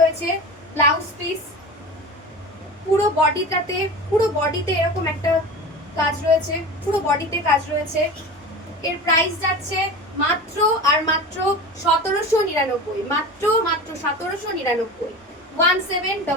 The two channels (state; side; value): normal; both; correlation 0.32